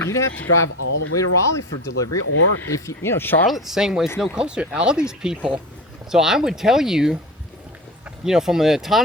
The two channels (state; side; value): normal; both; correlation 0.28